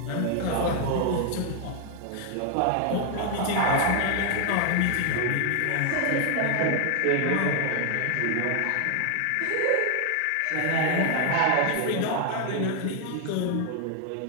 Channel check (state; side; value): different; both; correlation 0.00